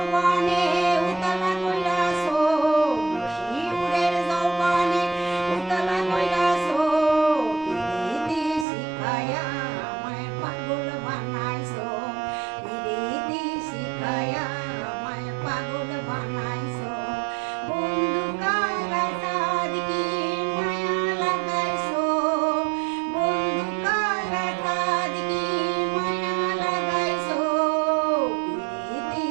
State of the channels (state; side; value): drops out; left; at 8.7 s